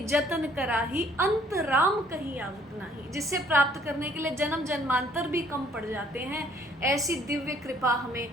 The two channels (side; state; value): both; normal; correlation 0.60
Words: जतन कराही, अंत राम कहीं आवत नाही। जिसे प्राप्त करने के लिए जन्म जन्मांतर भी कम पड़ जाते हैं। ऐसी दिव्य कृपा हमें